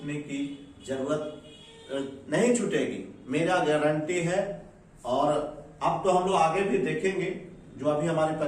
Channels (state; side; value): identical; both; correlation 1.00